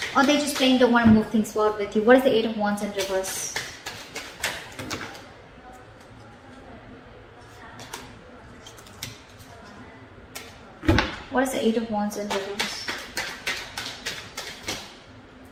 Or they just plain don't want to move things forward with you. What is the Eight of Wands in reverse? What is the Eight of Wands in reverse?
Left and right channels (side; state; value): both; identical; correlation 1.00